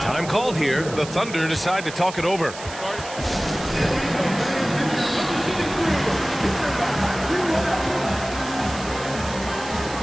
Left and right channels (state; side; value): noise; right; hiss, 13 dB below the sound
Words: called here. The Thunder decide to talk it over.